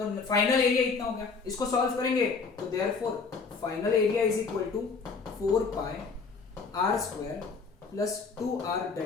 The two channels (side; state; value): right; quieter; 4.8 dB